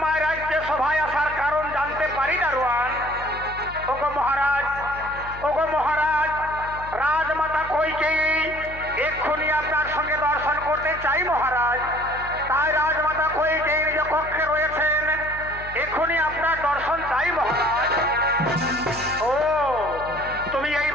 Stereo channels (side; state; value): left; noise; hum, 15 dB below the sound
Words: রাজ্যে সভায় আসার কারণ জানতে পারি দারোয়ান? ওগো মহারাজ, ওগো মহারাজ, রাজমাতা কইকেয়ী এক্ষুনি আপনার সঙ্গে দর্শন করতে চাই মহারাজ। তাই রাজমাতা কইকেয়ী নিজ কক্ষে রয়েছেন, এক্ষুনি আপনার দর্শন চাই মহারাজ। ও, তুমি এই